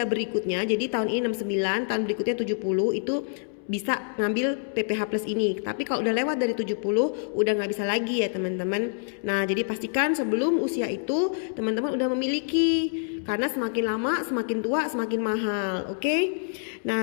berikutnya. Jadi tahun ini 69, tahun berikutnya 70 itu bisa ngambil PPH Plus ini. Tapi kalau udah lewat dari 70 udah nggak bisa lagi ya teman-teman. Nah, jadi pastikan sebelum usia itu teman-teman udah memiliki. Karena semakin lama semakin tua semakin mahal, oke?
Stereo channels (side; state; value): right; silent; 60 dB below the other